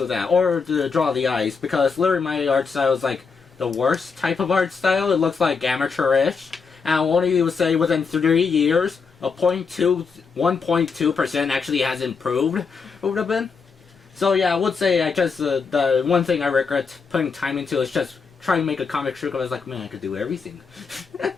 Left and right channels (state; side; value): quieter; right; 5.2 dB